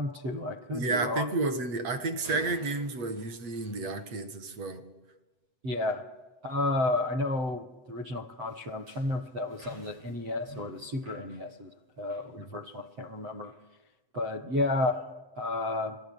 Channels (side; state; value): left; late; 7.9 ms